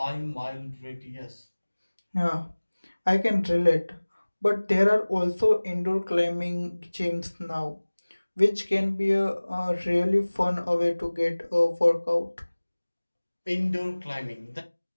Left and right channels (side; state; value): both; inverted; correlation -1.00